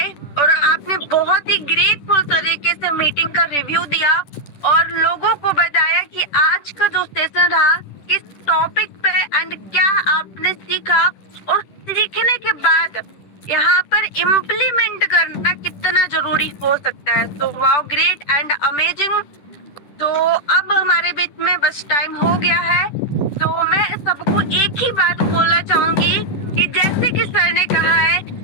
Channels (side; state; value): right; late; 10 ms